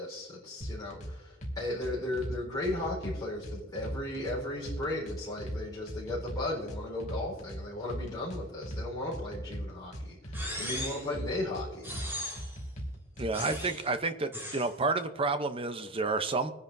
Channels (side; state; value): both; normal; correlation 0.32